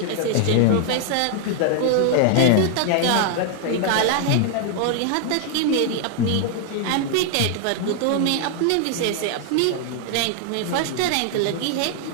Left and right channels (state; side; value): different; both; correlation 0.00